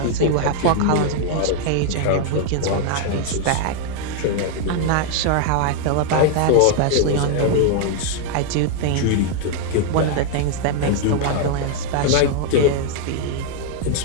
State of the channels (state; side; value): different; both; correlation 0.00